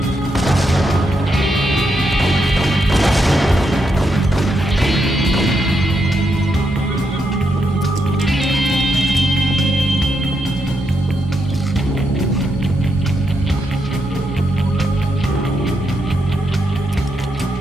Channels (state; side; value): normal; both; correlation 0.81